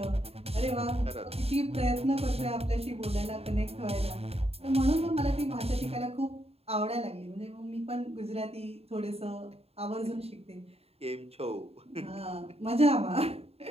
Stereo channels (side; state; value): left; late; 0.29 ms